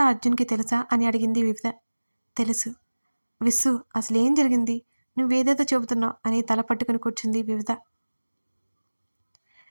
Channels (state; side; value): inverted; both; correlation -1.00